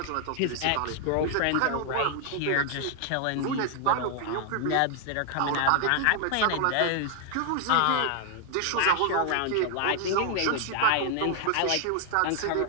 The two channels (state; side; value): different; both; correlation 0.00